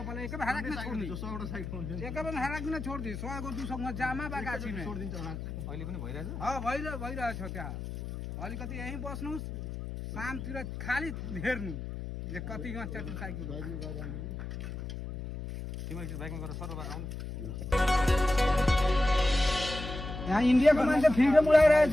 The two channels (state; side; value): noise; left; hum, 7 dB below the sound